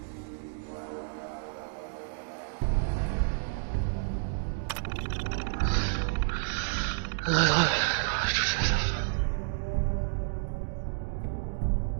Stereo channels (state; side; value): silent; left; digital silence